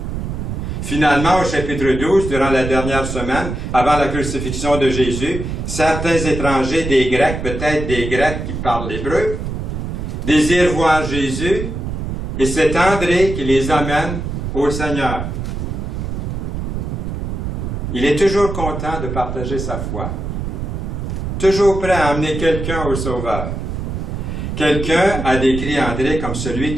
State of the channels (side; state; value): right; noise; rumble, 4 dB below the sound